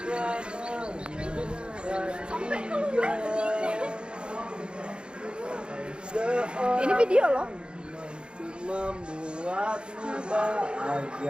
Ini video loh. Membuatmu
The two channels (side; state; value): left; late; 0.053 ms